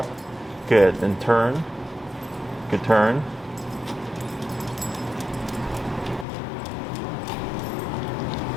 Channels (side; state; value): right; drops out; at 6.2 s